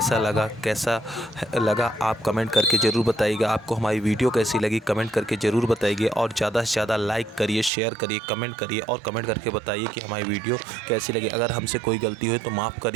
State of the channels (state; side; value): drops out; left; at 7.7 s